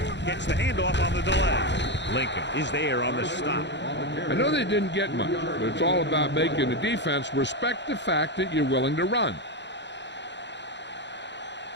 Gets the handoff on the delay. Lincoln is there on the stop. I know they didn't get much, but it's all about making the defense respect the fact that you're willing to run.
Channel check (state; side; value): late; right; 0.52 ms